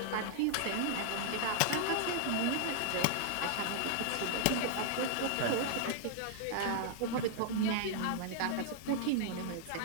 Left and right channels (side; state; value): both; different; correlation -0.01